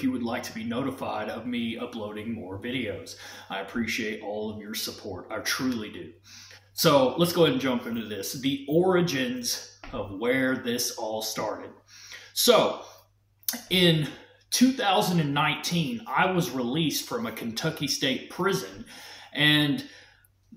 you would like to be notified of me uploading more videos. I appreciate all of your support. I truly do. So let's go ahead and jump into this. The origins of where this all started. So in 2019, I was released from a Kentucky State prison, and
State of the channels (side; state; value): both; identical; correlation 1.00